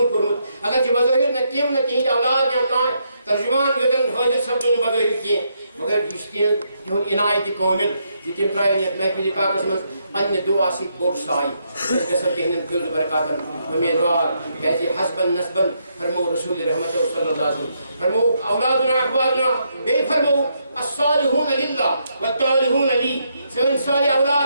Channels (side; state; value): both; inverted; correlation -0.77